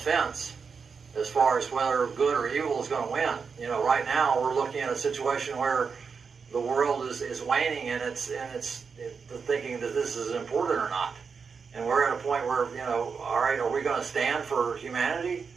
as far as whether good or evil is going to win. Right now we're looking at a situation where the world is waning and it's thinking that this is important or not. And we're at a point where, all right, are we going to stand for humanity,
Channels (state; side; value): quieter; left; 5.6 dB